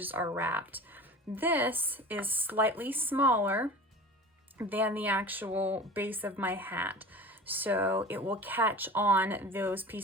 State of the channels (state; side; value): normal; both; correlation 0.36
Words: are wrapped. This is slightly smaller than the actual base of my hat, so it will catch on those